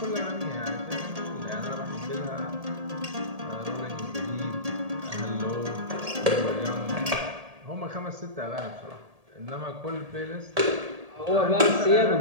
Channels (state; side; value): late; left; 1.7 ms